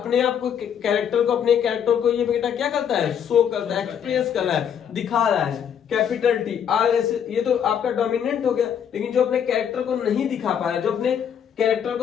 आप को कैरेक्टर को अपने कैरेक्टर को ये बेटा क्या करता है, शो करता है, एक्सप्रेस कर रहा है, दिखा रहा है। कैपिटल टी आर एस, ये तो आपका डोमिनेंट हो गया। लेकिन जो अपने कैरेक्टर को नहीं दिखा पा रहा है, जो अपने कैरेक्टर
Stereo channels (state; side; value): quieter; right; 8.4 dB